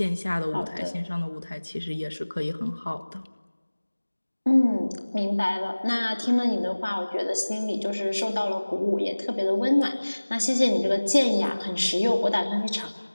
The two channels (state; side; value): inverted; both; correlation -1.00